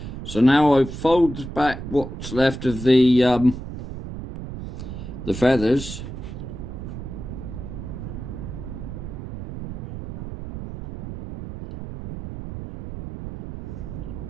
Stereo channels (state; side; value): noise; right; rumble, 9 dB below the sound